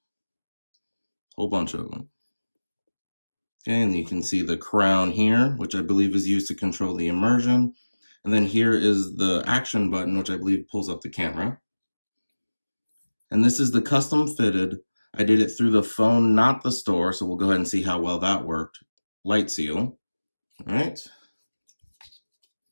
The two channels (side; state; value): both; inverted; correlation -1.00